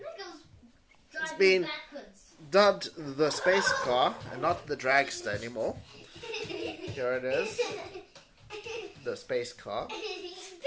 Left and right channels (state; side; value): identical; both; correlation 1.00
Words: It's been dubbed the space car and not the dragster anymore. Here it is. The space car.